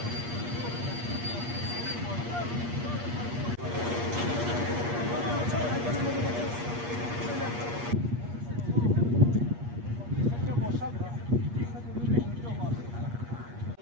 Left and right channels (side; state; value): left; late; 8.4 ms